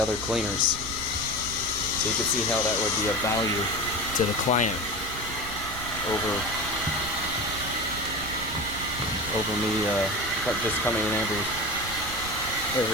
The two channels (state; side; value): noise; right; rumble, 10 dB below the sound